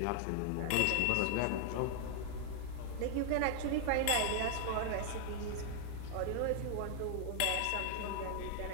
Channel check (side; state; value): both; different; correlation 0.00